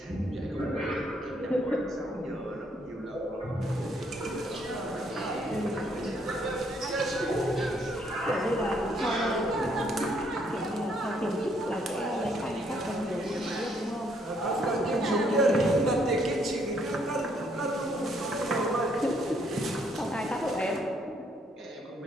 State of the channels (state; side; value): normal; both; correlation 0.69